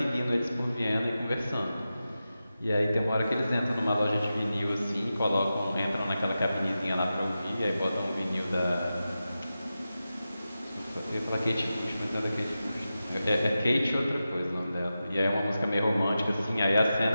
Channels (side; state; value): both; inverted; correlation -0.92